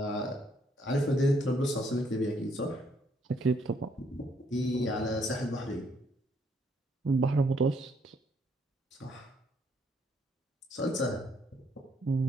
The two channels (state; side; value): normal; both; correlation 0.69